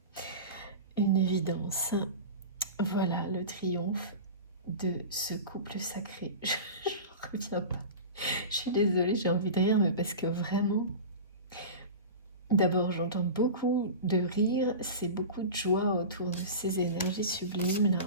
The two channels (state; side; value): inverted; both; correlation -0.30